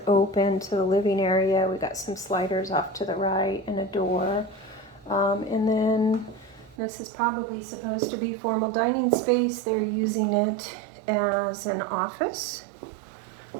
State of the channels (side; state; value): left; drops out; at 6.8 s